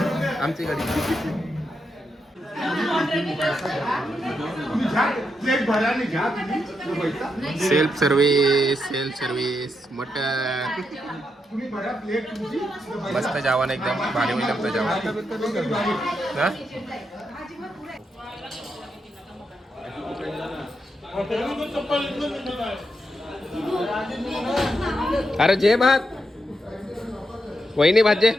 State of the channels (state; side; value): normal; both; correlation 0.83